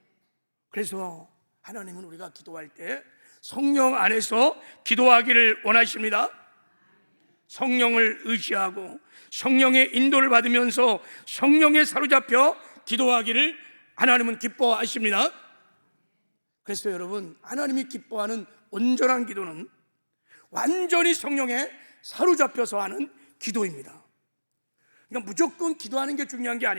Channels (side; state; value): both; inverted; correlation -1.00